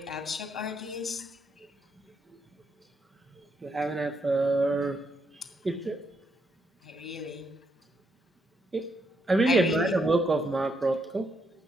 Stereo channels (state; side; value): normal; both; correlation 0.77